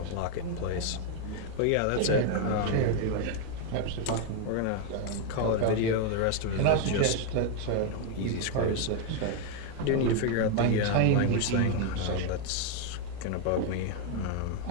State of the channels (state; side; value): different; both; correlation 0.01